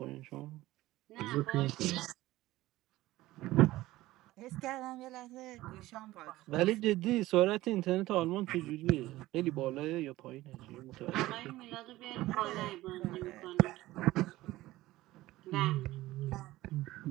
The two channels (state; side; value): quieter; left; 17.1 dB